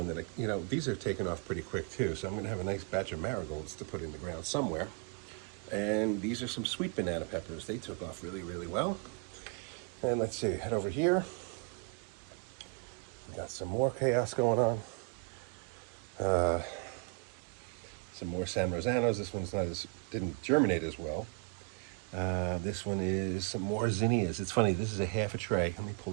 that these are taking off pretty quick too. So I'm going to have a nice batch of marigolds to put in the ground somewhere. And these are some sweet banana peppers. They took off really, really well. And let's see, head over here. Got some more chaos going on. Some more San Rosanos. This one's didn't germinate as well. This one is some more zinnias. It's funny, this is a half a tray. Let me pull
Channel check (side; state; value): left; quieter; 32.6 dB